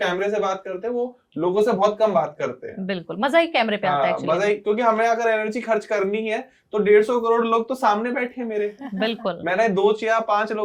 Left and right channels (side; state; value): both; identical; correlation 1.00